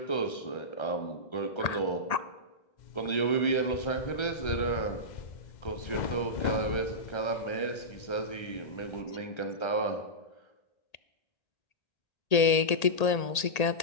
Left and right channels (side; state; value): right; late; 1.8 ms